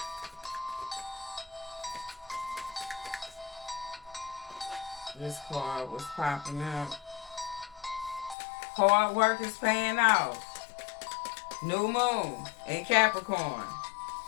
This card was popping up. Hard work is paying off. New moon in Capricorn.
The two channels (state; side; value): drops out; right; at 8.3 s